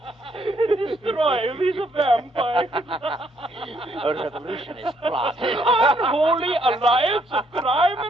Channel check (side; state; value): both; normal; correlation 0.70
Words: Destroy these vampires. A revolutionist plot. Unholy alliance of crime